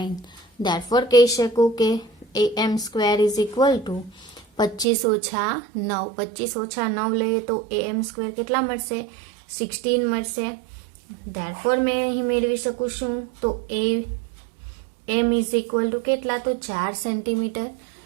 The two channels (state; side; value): drops out; left; at 4.9 s